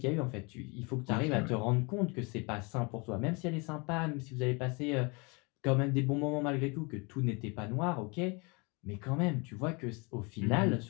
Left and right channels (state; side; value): quieter; right; 29.8 dB